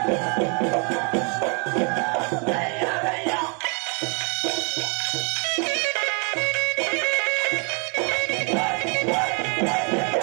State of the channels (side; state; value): left; quieter; 36.3 dB